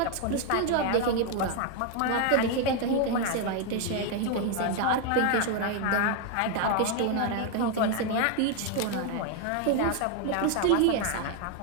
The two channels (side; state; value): both; different; correlation 0.01